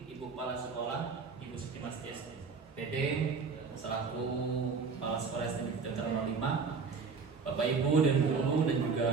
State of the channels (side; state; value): left; quieter; 5.0 dB